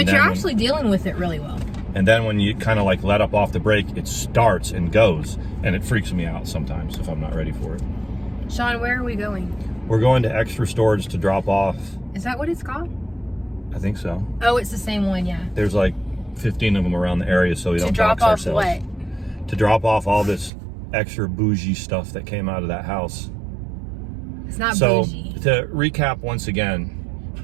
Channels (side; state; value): left; drops out; at 20.5 s